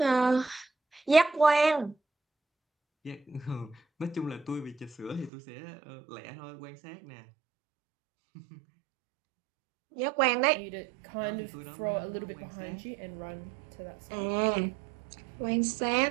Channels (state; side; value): drops out; left; at 5.3 s